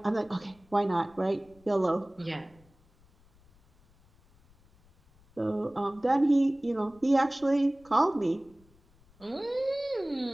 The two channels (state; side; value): noise; left; rumble, 30 dB below the sound